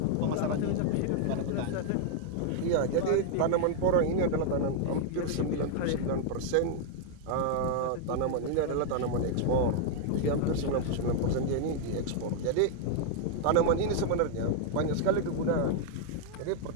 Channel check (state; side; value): different; both; correlation 0.00